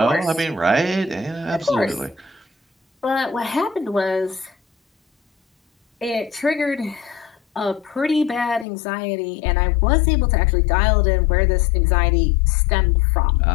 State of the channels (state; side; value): drops out; right; at 8.7 s